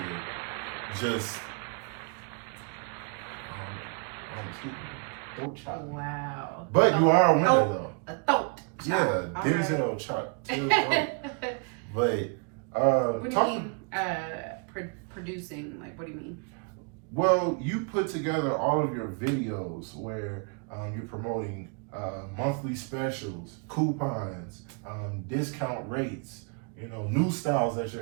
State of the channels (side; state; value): left; quieter; 37.8 dB